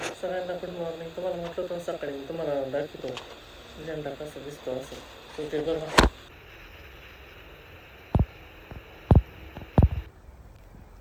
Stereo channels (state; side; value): identical; both; correlation 1.00